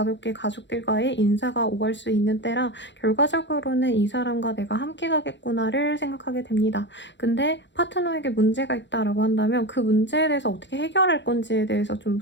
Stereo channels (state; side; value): late; right; 0.52 ms